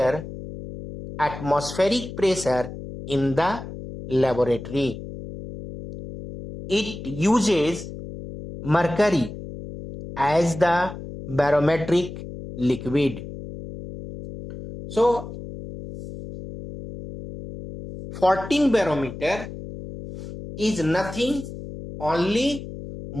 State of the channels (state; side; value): noise; left; hum, 11 dB below the sound